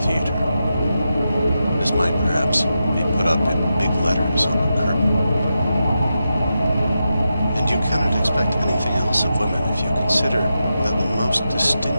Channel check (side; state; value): both; inverted; correlation -0.89